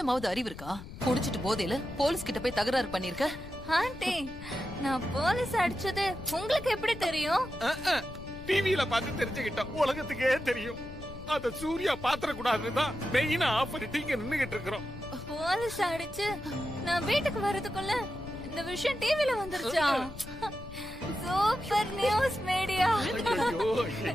அறிவு இருக்கா? குடிச்சிட்டு போதையில போலீஸ் கிட்ட போய் தகராறு பண்ணிருக்க. ஆண்டி, நான் போலீஸ் அடிச்சது உங்களுக்கு எப்படி தெரியும்? டிவில பார்த்து தெரிஞ்சுக்கிட்டோம். உலகத்துக்கே தெரியும். அத சூர்யா பாத்திர கூடாதுதான் மெயினா ஆஃப் பண்ணிட்டு இங்க நின்னுகிட்டு இருக்கிறோம். போலீஸ் அடிச்சு நான் வீட்டுக்கு வரதுக்குள்ள இந்த விஷயம் டிவில வந்துருச்சா? Super news media. ஐயோ,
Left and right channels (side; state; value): left; noise; rumble, 13 dB below the sound